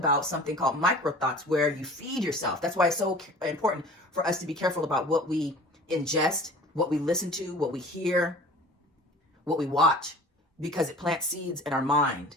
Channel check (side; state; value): both; normal; correlation 0.43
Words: something called micro thoughts, where you feed yourself. That's why it's so important for us to be careful about what we ingest, what we listen to, what we hear, what we watch, because it plants seeds in our mind.